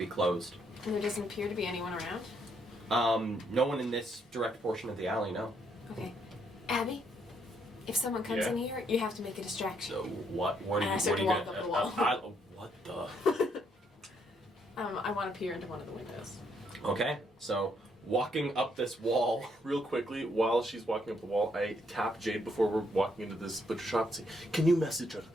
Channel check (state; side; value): normal; both; correlation 0.73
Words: closed. And there doesn't appear to be anyone around? No one in this direct portion of the alley, no. Okay. Abby, if someone comes Yeah? in here, you have to make a distraction. So what are And you I start to walk up the wall. what the? I want to peer into one of the windows. Okay, so walking up this wall. Real quickly, while she's walking up the wall, I tap Jade before we're walking into this butcher shop and say, "Can you message her?